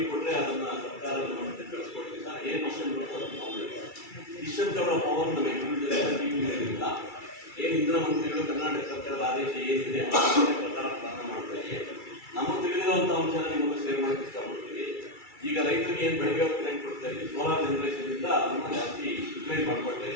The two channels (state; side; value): late; right; 2.3 ms